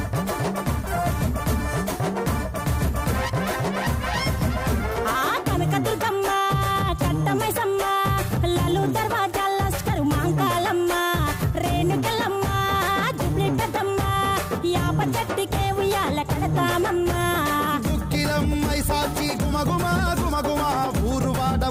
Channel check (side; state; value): both; identical; correlation 1.00